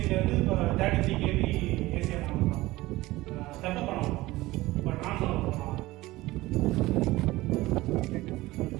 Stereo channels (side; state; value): left; quieter; 18.7 dB